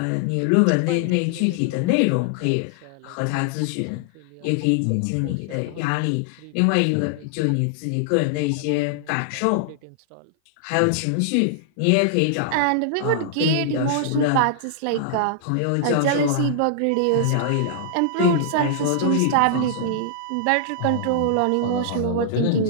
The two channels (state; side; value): different; both; correlation -0.01